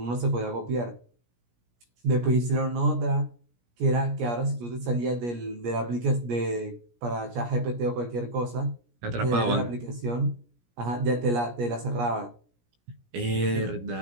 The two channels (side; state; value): left; late; 17 ms